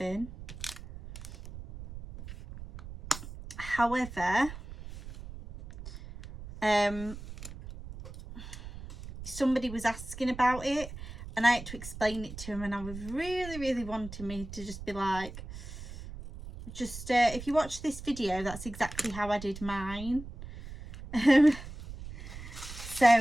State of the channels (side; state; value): right; noise; rumble, 12 dB below the sound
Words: However, somebody was asking about it and I had to explain it to him, and I was really wanting me to just be like, just if you watch this video, that's exactly how I did mine. So,